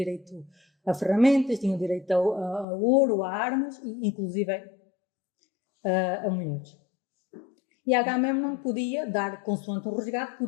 a ferramentas, tinha o direito a ouro, a armas, e inclusive a mulheres. E Agamemnon podia dar, consoante um resgate,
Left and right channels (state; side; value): drops out; right; at 2.7 s